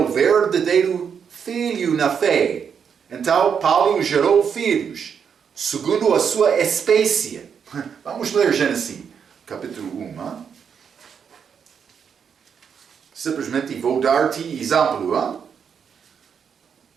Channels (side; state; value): left; quieter; 7.1 dB